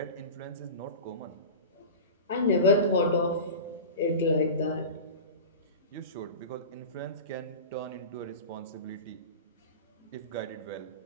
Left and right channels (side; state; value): both; inverted; correlation -0.31